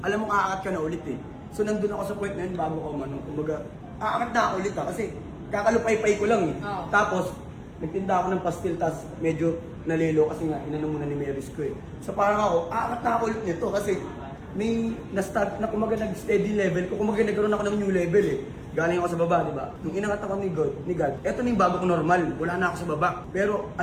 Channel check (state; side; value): identical; both; correlation 1.00